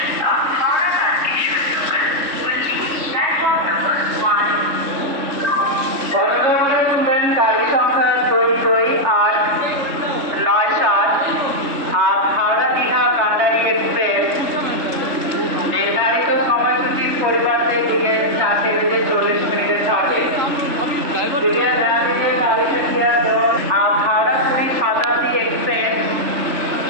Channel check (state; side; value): late; left; 3.4 ms